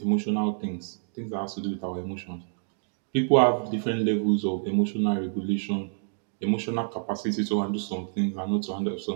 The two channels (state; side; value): silent; left; digital silence